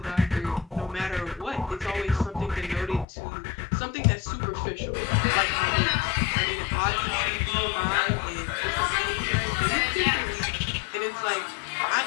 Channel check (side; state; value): right; drops out; at 3.1 s